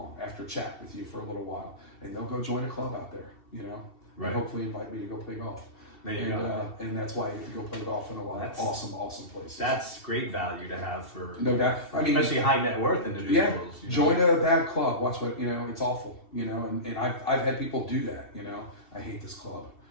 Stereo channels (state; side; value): late; right; 2.7 ms